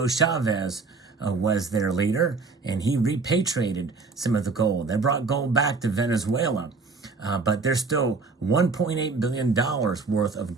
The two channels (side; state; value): left; quieter; 4.3 dB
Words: Chavez was their leader, and he repatriated some of the gold. They brought gold back to Venezuela. But there's still $1.8 billion worth of